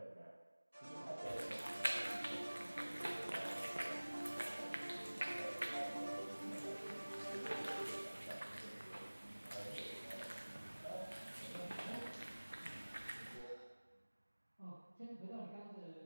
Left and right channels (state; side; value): inverted; both; correlation -1.00